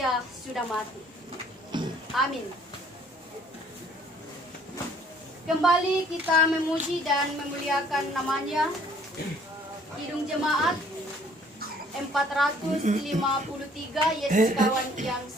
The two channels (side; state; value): both; normal; correlation 0.59